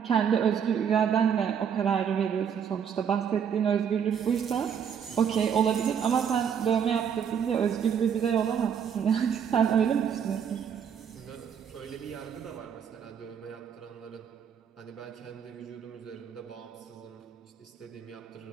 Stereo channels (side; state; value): left; quieter; 7.8 dB